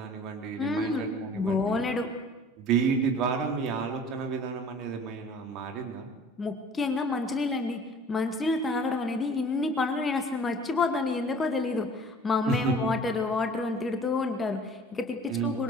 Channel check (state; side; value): normal; both; correlation 0.48